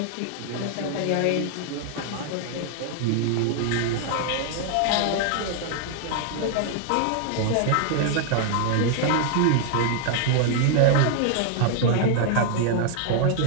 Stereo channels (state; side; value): different; both; correlation 0.00